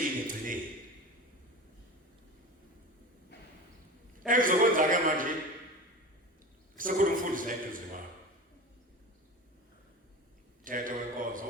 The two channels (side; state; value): both; normal; correlation 0.30